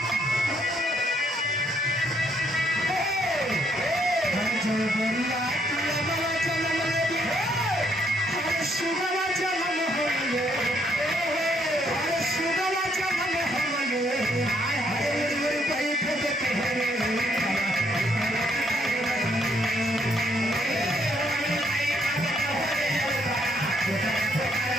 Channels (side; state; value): both; normal; correlation 0.71